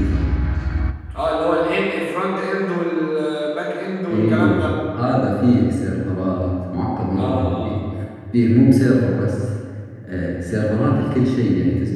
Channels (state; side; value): identical; both; correlation 1.00